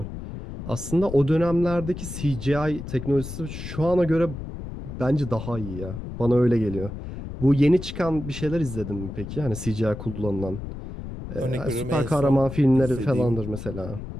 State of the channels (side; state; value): left; noise; rumble, 9 dB below the sound